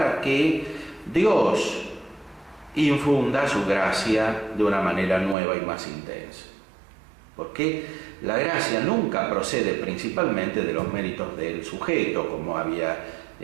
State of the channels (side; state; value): left; drops out; at 5.4 s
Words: que Dios infunda su gracia de una manera nueva y más intensa. Porque la gracia nunca procede principalmente de los méritos del sujeto, como había